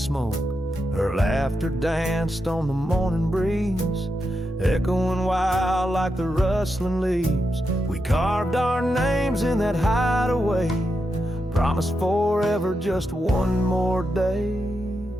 her laughter danced on the morning breeze, echoing wild like the rustling leaves. We carved our names in that hideaway, promised forever, just one more day.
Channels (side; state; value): both; normal; correlation 0.86